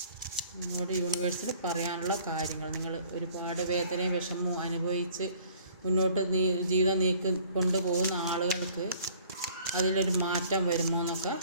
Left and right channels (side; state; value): both; inverted; correlation -0.54